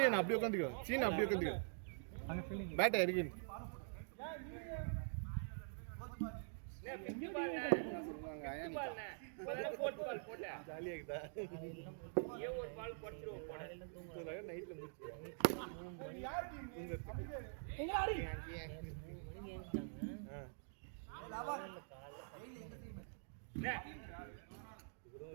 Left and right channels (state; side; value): silent; left; digital silence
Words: என்ன அப்படியே உட்கார்ந்துக்கோ. சீனா அப்படியே உட்கார்ந்துக்கோ. அங்க ஃபீலிங் பேட் இருக்கு. ஜாலியா இருக்குதா? ஒரு பால் போட்டுருவோம் போட. நைட்ல முடிச்சு. யார் டீம்? எங்க ஆடி? லவன். டெய்லி எங்க டீம்?